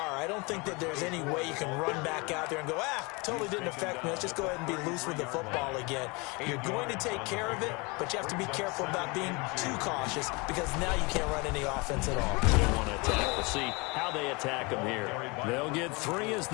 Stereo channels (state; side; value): quieter; right; 27.6 dB